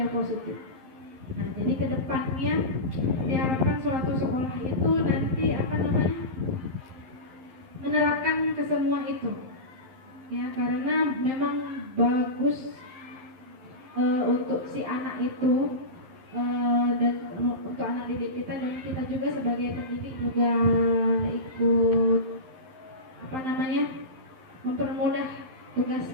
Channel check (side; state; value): left; late; 11 ms